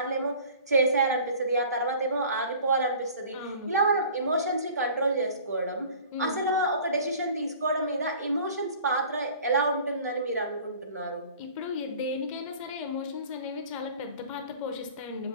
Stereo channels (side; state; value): both; inverted; correlation -0.46